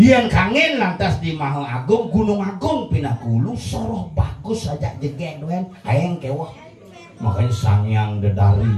kangen lantas di Maha Agung Gunung Agung Pinakulu soroh bagus saja jege doen aeng kewah makanya sangyang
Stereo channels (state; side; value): identical; both; correlation 1.00